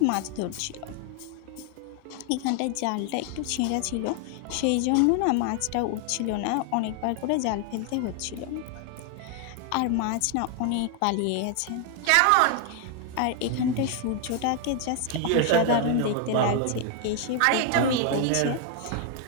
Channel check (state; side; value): different; both; correlation 0.00